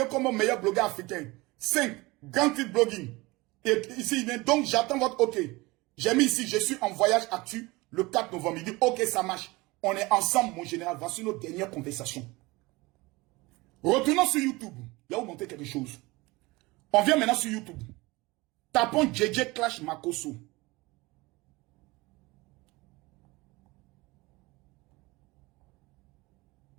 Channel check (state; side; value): quieter; left; 22.6 dB